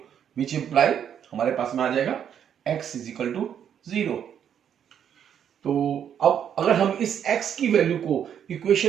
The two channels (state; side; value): quieter; left; 8.8 dB